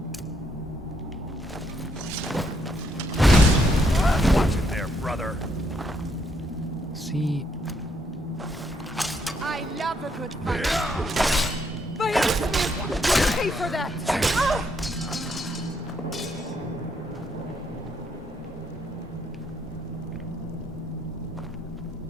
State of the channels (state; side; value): normal; both; correlation 0.73